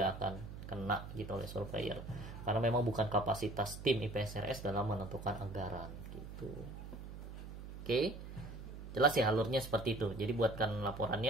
akan kena gitu oleh surveyor karena memang bukan kapasitas tim IPSRS dalam menentukan anggaran gitu. Oke. Jelas ya alurnya seperti itu. Jadi buatkan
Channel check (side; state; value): right; noise; hum, 10 dB below the sound